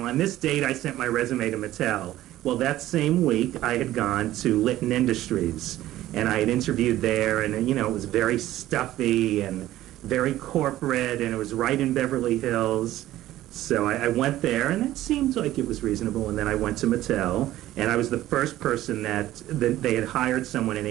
on this date, I sent my resume to Mattel. Well, that same week, I had gone to Litton Industries, and I had interviewed there, and, you know, it was very stuffy and very corporate, and it was right in Beverly Hills. So I went there, and it seemed like it was reasonable, and then I went to Mattel, and I was the first person that they had hired someone in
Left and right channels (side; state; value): left; quieter; 14.6 dB